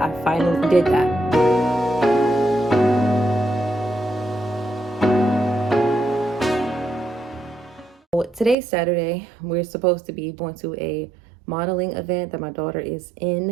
I finally did that. Today's Saturday. We're supposed to be going to a modeling event that my daughter is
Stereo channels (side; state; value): left; drops out; at 8.6 s